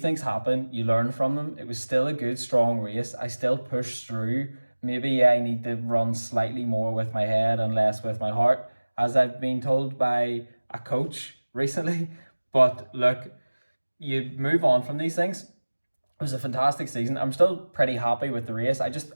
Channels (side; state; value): both; inverted; correlation -1.00